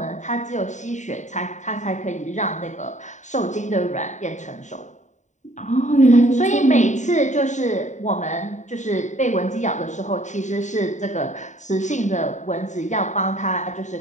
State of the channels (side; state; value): right; late; 0.35 ms